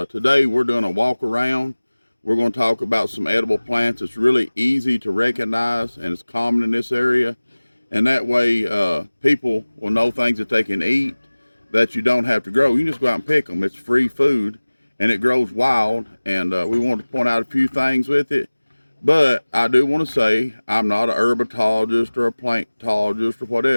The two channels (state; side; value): inverted; both; correlation -1.00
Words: today we're doing a walk around. We're going to talk about some edible plants. It's really easy to recognize, and it's common in this area. And that way, people will know things that they can eat that you don't have to grow. You can just go out and pick them. It's free food, and it grows wild. And we want to point out a few things with it. But I do want to say I'm not a herpetologist or a plantologist or